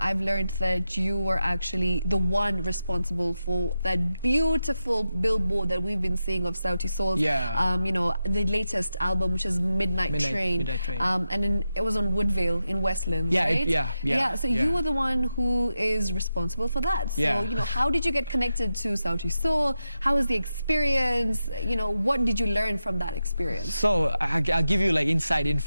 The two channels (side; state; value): both; inverted; correlation -0.89